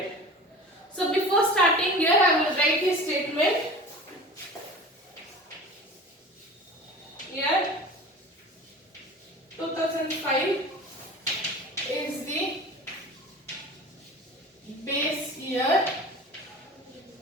So before starting here I will write the statement. Here 2005 is the base year.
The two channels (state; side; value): normal; both; correlation 0.37